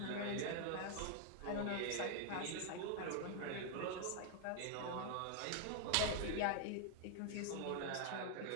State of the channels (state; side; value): different; both; correlation 0.00